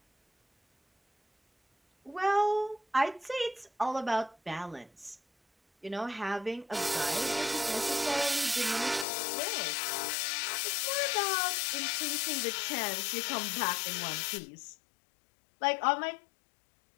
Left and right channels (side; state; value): right; drops out; at 9.1 s